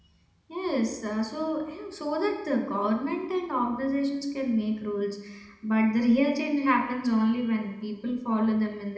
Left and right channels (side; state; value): both; identical; correlation 1.00